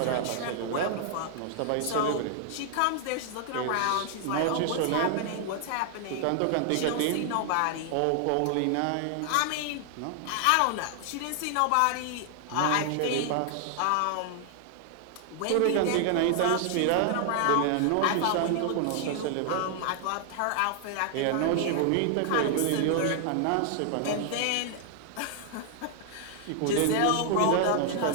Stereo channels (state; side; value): different; both; correlation 0.00